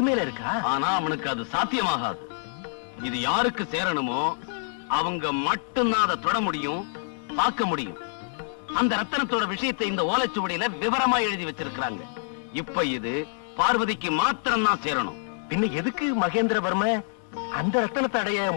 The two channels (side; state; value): right; silent; 61 dB below the other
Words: மேல இருக்கா? ஆனா அவனுக்கு அது சாத்தியமாகாது. இது யாருக்கு சேரணுமோ அவங்க மட்டும்தான் அதை தொட முடியும், பார்க்க முடியும். அந்த ரத்தனத்தோட விஷயத்தை இந்த ஓலைச்சுவடியில விவரமா எழுதி வச்சிருக்காங்க. இப்ப இது பார்வதிக்கு மாத்திரம் தான் சேரணும். பின்ன எதுக்கு மகேந்திரவர்ம அந்த ரத்தனத்தை அடைய